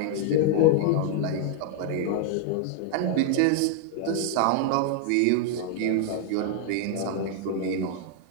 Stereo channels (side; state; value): both; different; correlation 0.00